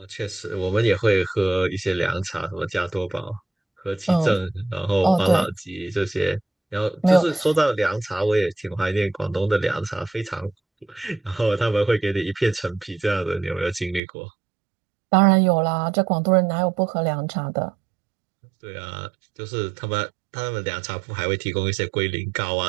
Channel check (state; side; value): drops out; left; at 14.0 s